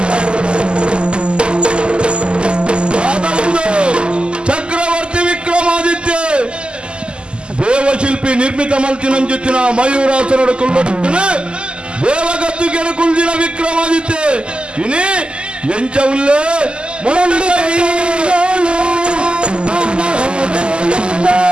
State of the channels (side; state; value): left; late; 0.050 ms